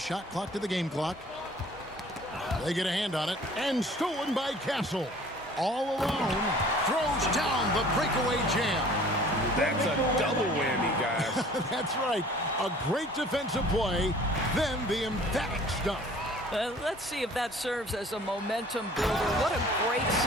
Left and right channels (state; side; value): normal; both; correlation 0.50